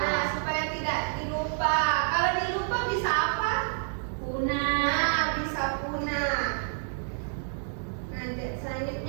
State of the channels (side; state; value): left; silent; digital silence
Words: supaya tidak dilupa. Kalau dilupa bisa apa? Punah. Nah, bisa punah. Nah,